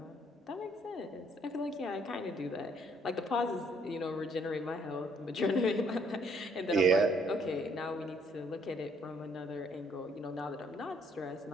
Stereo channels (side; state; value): both; normal; correlation 0.66